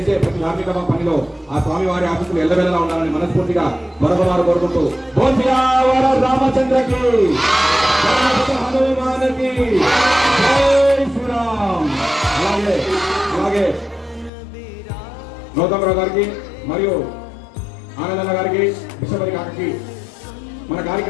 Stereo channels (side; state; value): right; drops out; at 14.3 s